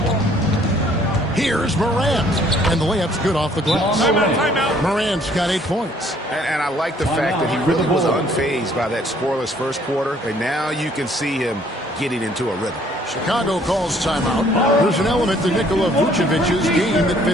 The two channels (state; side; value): normal; both; correlation 0.61